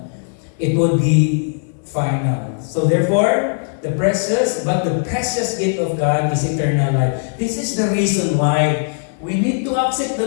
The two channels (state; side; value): silent; right; digital silence